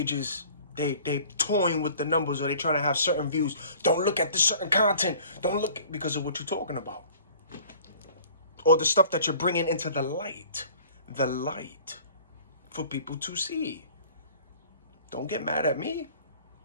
they toying with the numbers, or they trying to have certain views. Don't look at this certain content. Don't look, because of what you're talking about. Or the stuff that you're bringing into the light. The light. For people to see. Don't get mad at me.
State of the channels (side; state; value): both; inverted; correlation -0.48